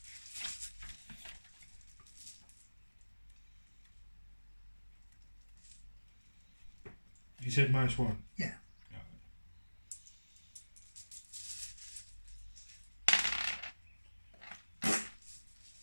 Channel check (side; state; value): both; inverted; correlation -1.00